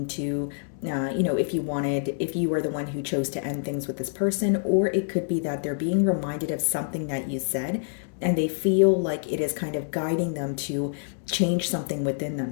to, if you were the one who chose to end things with this person, or it could be that they're being reminded of something that you said and they feel like it is kind of guiding them to change something within them.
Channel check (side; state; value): right; silent; 61 dB below the other